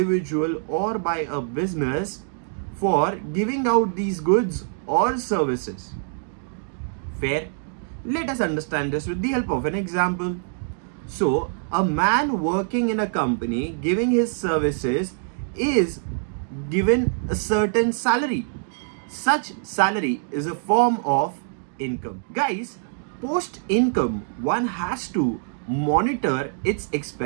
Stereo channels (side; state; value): left; silent; digital silence